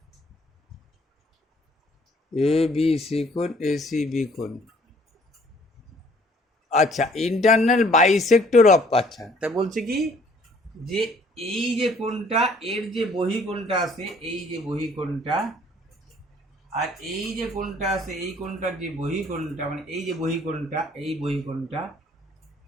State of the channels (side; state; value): both; normal; correlation 0.59